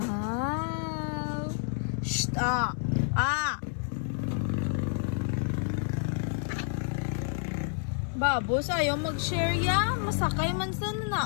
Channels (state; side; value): silent; right; 56 dB below the other